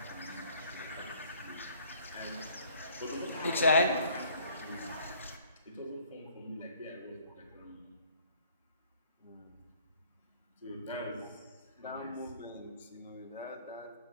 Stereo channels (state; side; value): inverted; both; correlation -0.58